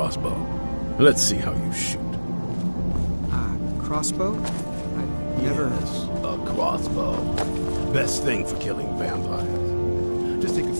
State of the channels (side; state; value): both; inverted; correlation -1.00